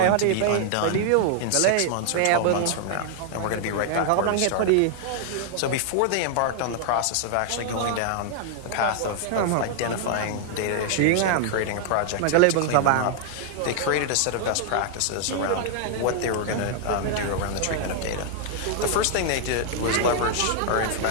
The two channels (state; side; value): different; both; correlation 0.00